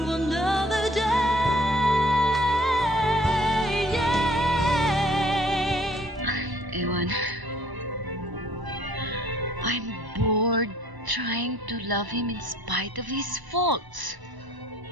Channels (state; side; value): normal; both; correlation 0.58